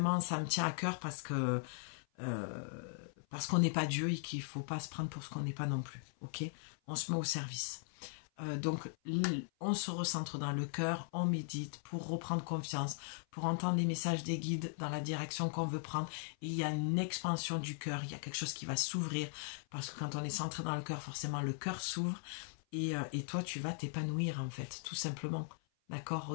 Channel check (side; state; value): right; silent; 52 dB below the other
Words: ça me tient à cœur parce qu'on n'est pas Dieu et qu'il ne faut pas se prendre pour ce qu'on n'est pas non plus. Ok? On se met au service. Donc, on se recentre dans le cœur, on médite pour reprendre confiance, pour entendre les messages des guides dans la direction qu'on veut prendre. Et il y a une expansion du cœur, il y a quelque chose qui va s'ouvrir. Parce que quand on est centré dans le cœur, forcément, le cœur s'ouvre. Et toi, tu vas t'épanouir, en fait, tout simplement. D'accord?